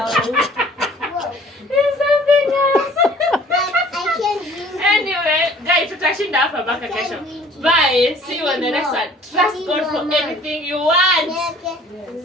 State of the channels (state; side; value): normal; both; correlation 0.52